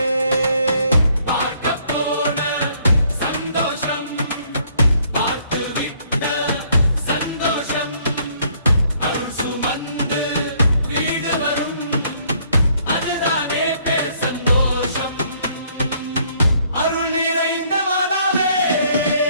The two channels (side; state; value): both; inverted; correlation -0.65